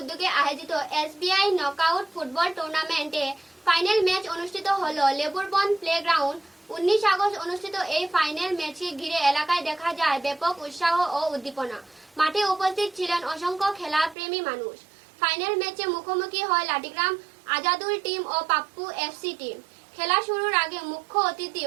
আয়োজিত এসবিআই নকআউট ফুটবল টুর্নামেন্টে ফাইনাল ম্যাচ অনুষ্ঠিত হলো লেবুরবন্দ প্লেগ্রাউন্ড। 19 আগস্ট অনুষ্ঠিত এই ফাইনাল ম্যাচকে ঘিরে এলাকায় দেখা যায় ব্যাপক উৎসাহ ও উদ্দীপনা। মাঠে উপস্থিত ছিলেন অসংখ্য খেলাপ্রেমী মানুষ। ফাইনাল ম্যাচে মুখোমুখি হয় লাঠিগ্রাম আজাদুল টিম ও পাপ্পু এফসি টিম। খেলা শুরুর আগে মুখ্য অতিথি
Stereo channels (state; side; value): drops out; left; at 14.2 s